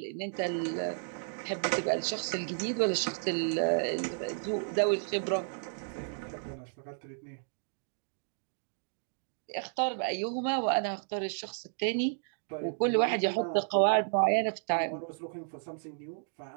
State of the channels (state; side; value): silent; left; digital silence